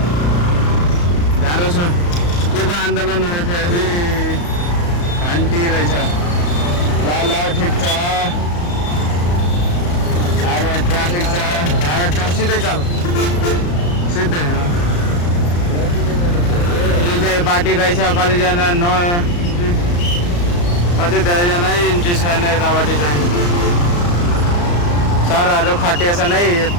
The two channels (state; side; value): late; right; 34 ms